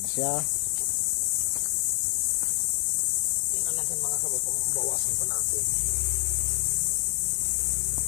Siya. Tingnan natin mga kabay kung bawasan pa natin.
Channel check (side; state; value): right; silent; digital silence